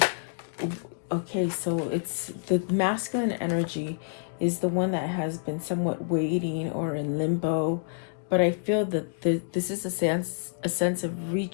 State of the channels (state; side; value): silent; right; digital silence